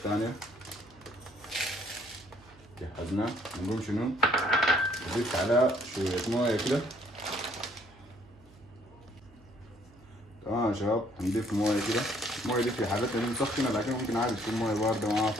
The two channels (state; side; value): noise; right; hum, 26 dB below the sound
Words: جهزناه، نقوم شنو نضيف عليها شوية موية كده. تمام يا شباب، هنضيف موية كده. الموية دي في حالتنا دي مسخنة، لكن ممكن عادي تكون موية باردة ما